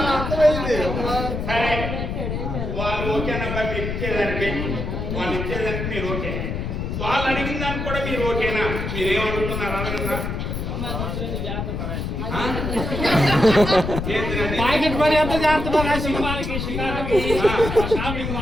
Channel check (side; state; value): left; noise; rumble, 3 dB below the sound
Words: అర్థమైంది. సరే వాళ్ళు ఓకేనబ్బా మీరు ఇచ్చేదానికి వాళ్ళు ఇచ్చేదానికి మీరు ఓకే వాళ్ళు అడిగిన దానికి కూడా మీరు ఓకేనా మీరేమడుగుతున్నారు అడగరా ప్యాకెట్ పని ఎంత చేస్తున్నారు